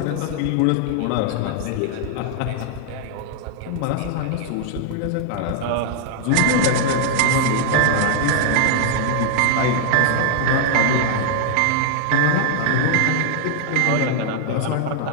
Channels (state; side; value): different; both; correlation -0.01